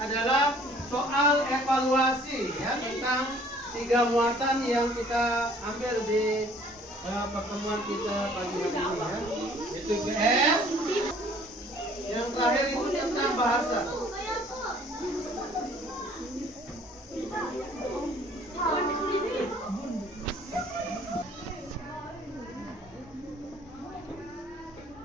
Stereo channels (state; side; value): normal; both; correlation 0.56